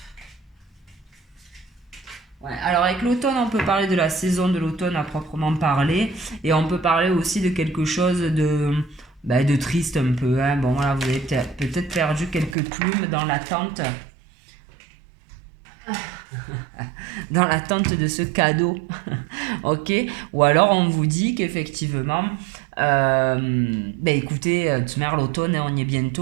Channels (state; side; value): drops out; left; at 12.6 s